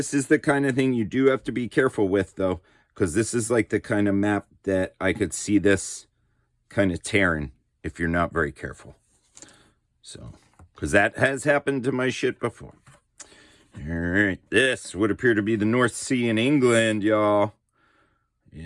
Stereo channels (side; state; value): both; identical; correlation 1.00